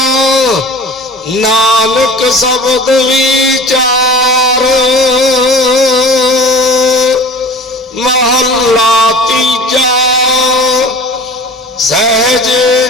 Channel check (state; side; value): normal; both; correlation 0.40